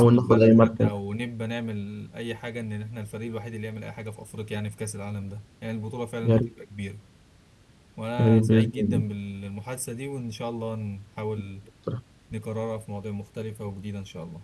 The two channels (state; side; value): identical; both; correlation 1.00